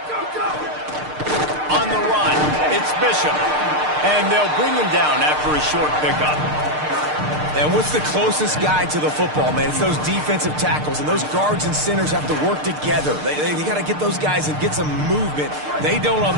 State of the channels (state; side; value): late; left; 6.6 ms